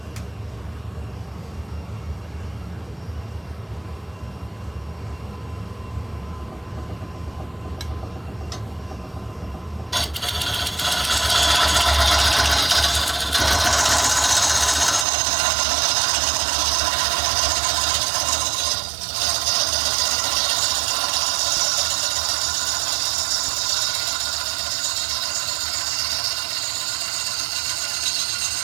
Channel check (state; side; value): drops out; left; at 15.1 s